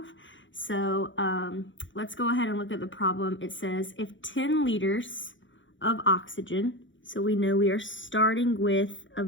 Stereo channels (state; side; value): late; right; 0.55 ms